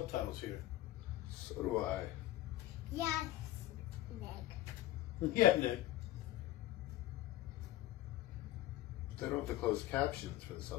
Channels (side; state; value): right; quieter; 15.2 dB